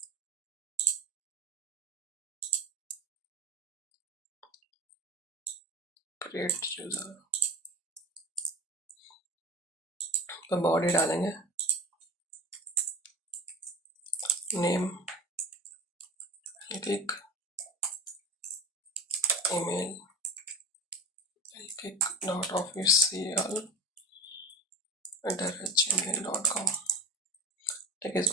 क्रिएट यूजर, तो बॉडी डालेंगे, नेम, क्लिक, ईमेल, click.official@gmail.com। ठीक है,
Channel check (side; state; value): both; normal; correlation 0.33